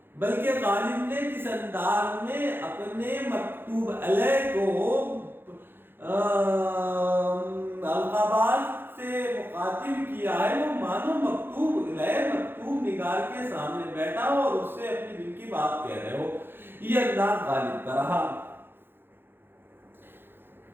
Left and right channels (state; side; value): late; left; 0.10 ms